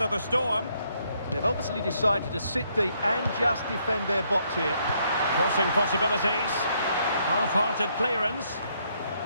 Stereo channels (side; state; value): both; inverted; correlation -0.72